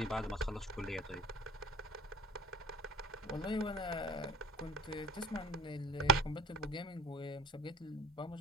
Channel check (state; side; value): normal; both; correlation 0.39